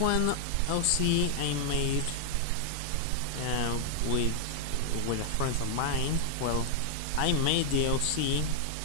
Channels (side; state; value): both; different; correlation -0.01